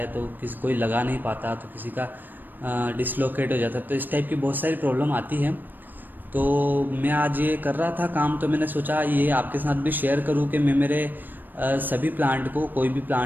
तो किसी कोई लगा नहीं पाता, तो किसी का डिसलोकेट हो जाता है। तो इस टाइप की बहुत सारी प्रॉब्लम आती है। तो मैं आज ये कर रहा था काम, तो मैंने सोचा ये आपके साथ भी शेयर करूं कि मैं मेरे सभी प्लांट को, कोई भी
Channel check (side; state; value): left; late; 0.091 ms